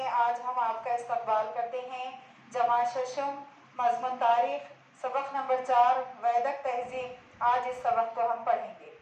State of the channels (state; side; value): identical; both; correlation 1.00